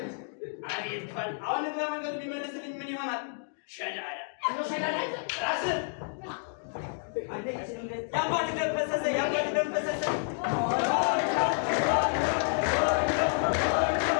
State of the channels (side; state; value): right; silent; digital silence